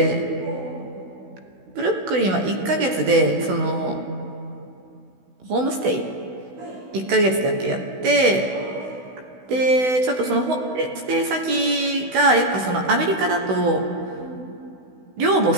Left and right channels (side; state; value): left; late; 16 ms